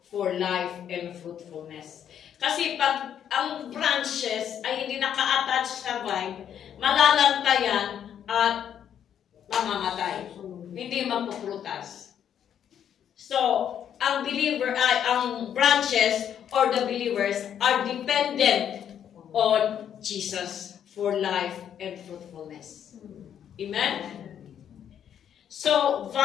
for life and fruitfulness. Kasi pag ang branches ay hindi naka-attach sa vine, malalantayan at mamamatay. Hindi magpuprutas. So, ang branches or the believers are dependent on Jesus for life and fruitfulness. Amen? So,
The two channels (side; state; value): right; quieter; 9.2 dB